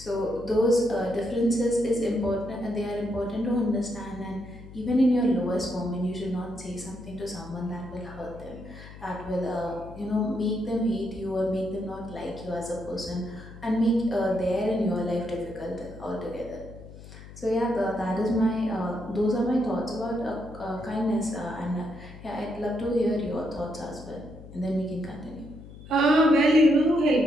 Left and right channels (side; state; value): left; noise; hum, 16 dB below the sound